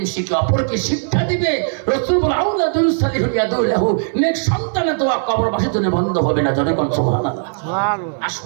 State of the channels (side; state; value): left; silent; 59 dB below the other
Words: শিখে অপরকে শিক্ষা দিবে, রাসূল বলেন আউলাদুন সালিহুন ইয়াদুলাহু, নেক সন্তানের দোয়া কবরবাসীর জন্য বন্ধ হবে না। জনে কোন সুবহানাল্লাহ। সুবহানাল্লাহ।